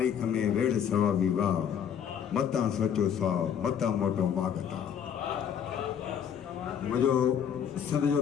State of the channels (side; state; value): right; quieter; 8.4 dB